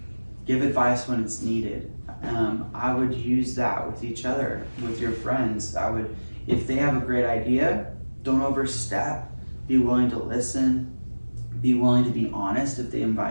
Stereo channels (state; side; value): inverted; both; correlation -1.00